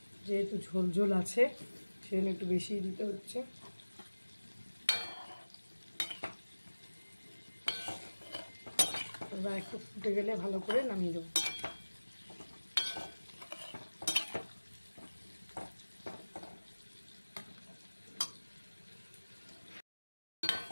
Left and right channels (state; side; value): inverted; both; correlation -1.00